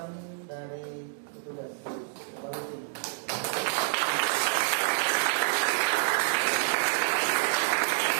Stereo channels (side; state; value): left; silent; digital silence